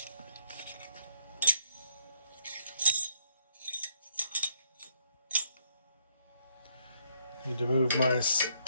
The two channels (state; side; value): inverted; both; correlation -0.71